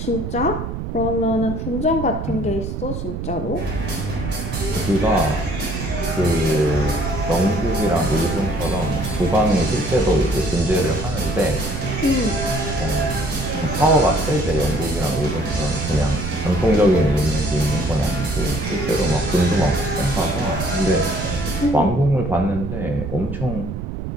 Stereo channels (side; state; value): right; noise; rumble, 5 dB below the sound